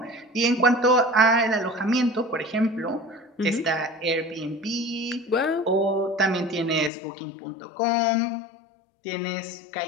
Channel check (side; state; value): right; drops out; at 6.9 s